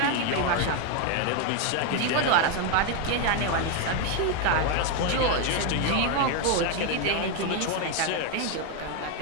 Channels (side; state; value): both; different; correlation 0.01